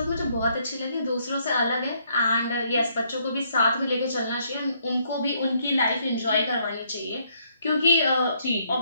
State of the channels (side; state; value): both; inverted; correlation -0.70